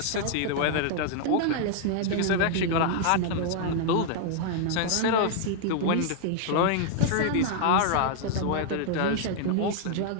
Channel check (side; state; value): both; different; correlation 0.00